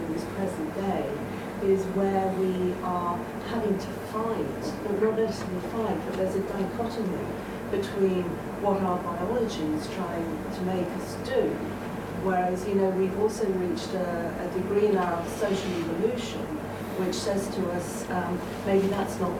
in this present day is where we are having to fight, or not necessarily fight, but there's a dichotomy between what our biology is trying to make us do. Whereas, you know, we've also reached a degree in our social evolution which says to us, maybe that's not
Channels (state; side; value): identical; both; correlation 1.00